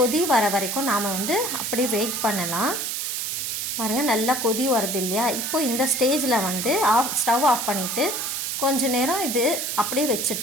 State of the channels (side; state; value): right; noise; hiss, 2 dB below the sound